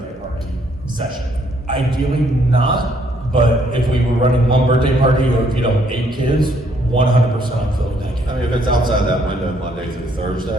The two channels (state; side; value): normal; both; correlation 0.68